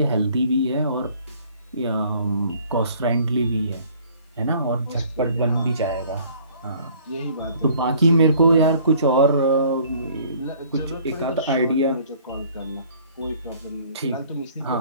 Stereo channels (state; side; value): inverted; both; correlation -0.56